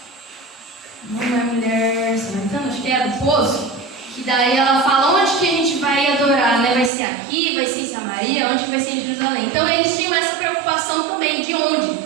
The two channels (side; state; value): left; drops out; at 6.9 s